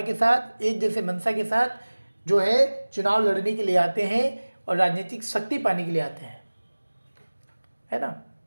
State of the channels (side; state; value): both; inverted; correlation -1.00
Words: के साथ, एक जैसे मंशा के साथ जो है चुनाव लड़ने के लिए आते हैं और राजनीतिक शक्ति पाने के लिए आते हैं, है ना।